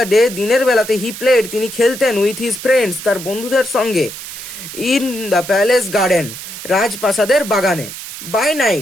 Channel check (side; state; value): right; noise; hiss, 11 dB below the sound